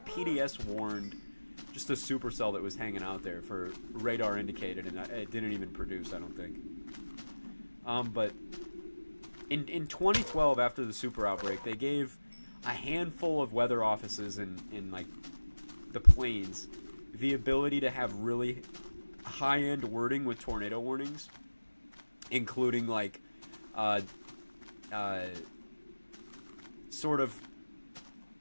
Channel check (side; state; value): both; inverted; correlation -1.00